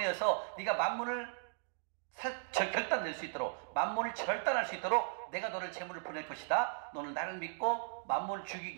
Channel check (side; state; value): left; silent; digital silence